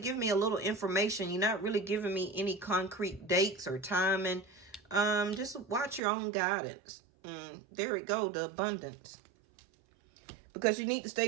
me a little information. You're not really giving me any concrete dates or timing. Just watch your own guidance. There we go, the abundance. Because you need to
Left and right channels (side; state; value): left; drops out; at 6.0 s